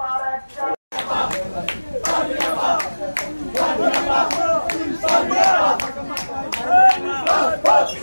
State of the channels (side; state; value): both; inverted; correlation -1.00